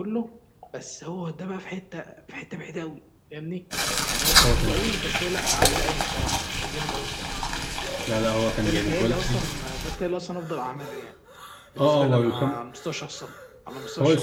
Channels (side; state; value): both; identical; correlation 1.00